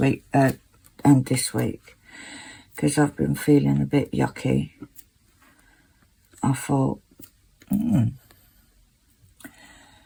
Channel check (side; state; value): both; identical; correlation 1.00